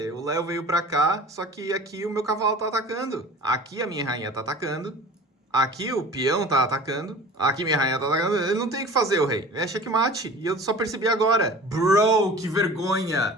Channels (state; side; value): normal; both; correlation 0.41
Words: O Léo veio pra cá, só que aqui o meu cavalo tá atacando. Aqui a minha rainha tá atacando. Aqui o peão tá atacando. Aqui minha rainha tá atacando. Ele não tem o que fazer, o rei. É checkmate. E eu só percebi agora. Bro, que vergonha.